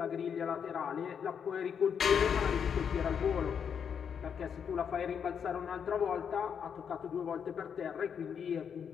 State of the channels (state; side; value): quieter; right; 7.4 dB